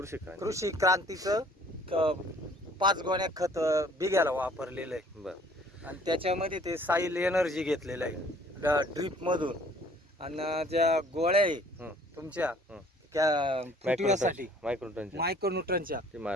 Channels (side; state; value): both; normal; correlation 0.56